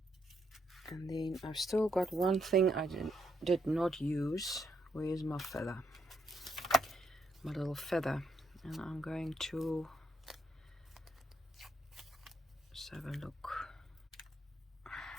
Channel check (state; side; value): normal; both; correlation 0.76